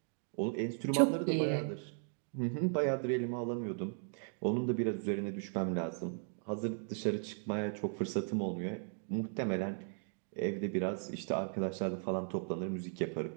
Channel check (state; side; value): silent; left; 53 dB below the other